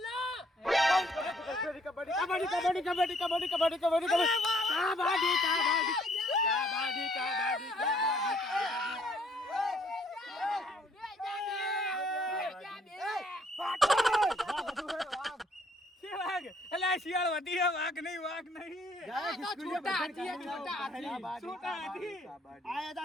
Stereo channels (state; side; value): normal; both; correlation 0.65